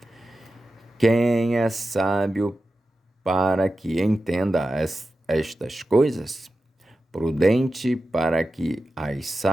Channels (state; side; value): normal; both; correlation 0.93